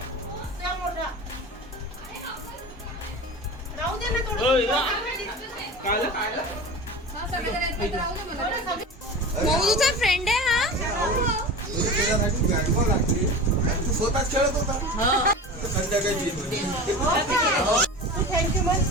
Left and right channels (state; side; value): normal; both; correlation 0.32